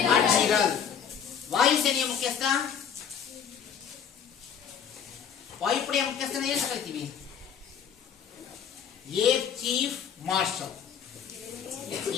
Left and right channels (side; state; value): right; quieter; 7.8 dB